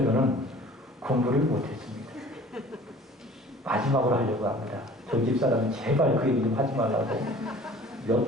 공부를 못했습니다. 마지막으로 하려고 합니다. 저희 집사람은 제발 그 얘기 좀 하지 말라고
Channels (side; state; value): both; normal; correlation 0.47